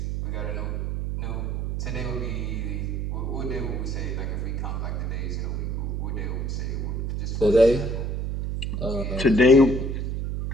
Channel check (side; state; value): right; noise; hum, 1 dB below the sound